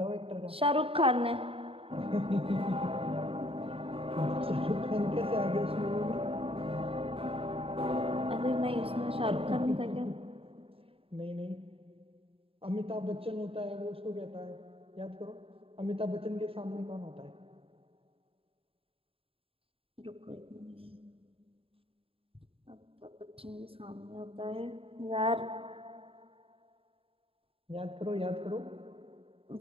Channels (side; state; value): left; late; 0.27 ms